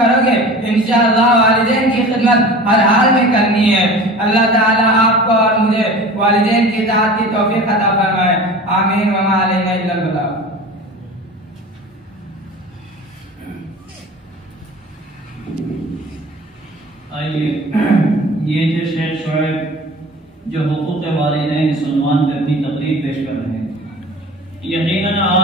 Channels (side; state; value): both; normal; correlation 0.39